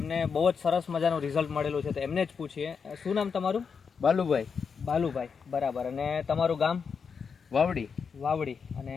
બહુ જ સરસ મજાનું રિઝલ્ટ મળેલું છે. તો એમને જ પૂછીએ, શું નામ તમારું? બાલુભાઈ. બાલુભાઈ, બરાબર. અને તમારું ગામ? વાવડી. વાવડી. અને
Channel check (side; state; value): right; quieter; 6.0 dB